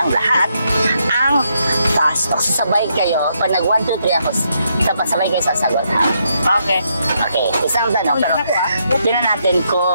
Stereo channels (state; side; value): inverted; both; correlation -0.77